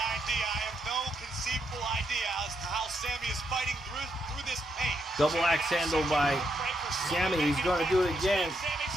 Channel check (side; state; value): both; normal; correlation 0.79